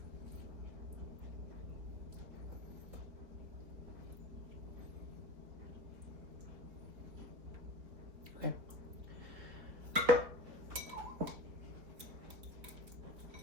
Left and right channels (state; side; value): late; left; 4.2 ms